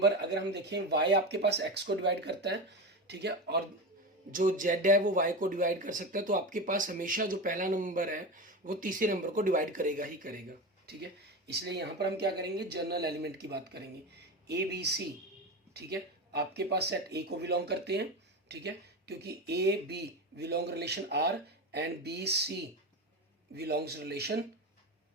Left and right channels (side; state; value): both; normal; correlation 0.22